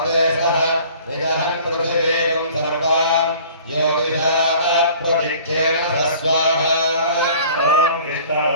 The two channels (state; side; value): inverted; both; correlation -0.49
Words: सः निजहन् पृथिवीं सर्वां ज्योतिषाः प्रदिक्षेण स्वाहा ॐ